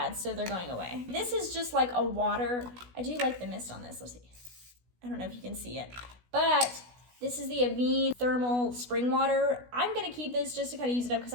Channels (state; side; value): late; left; 16 ms